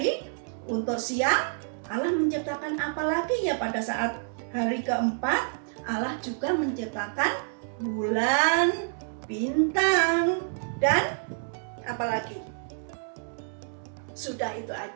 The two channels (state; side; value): silent; left; digital silence